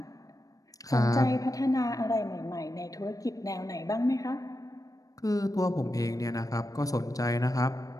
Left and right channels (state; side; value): late; right; 0.17 ms